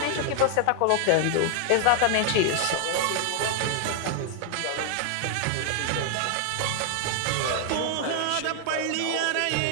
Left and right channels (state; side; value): different; both; correlation 0.00